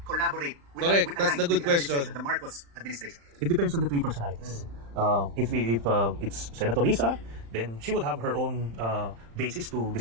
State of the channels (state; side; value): late; left; 35 ms